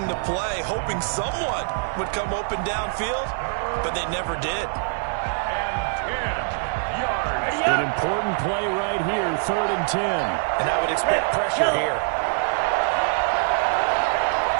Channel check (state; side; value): silent; left; digital silence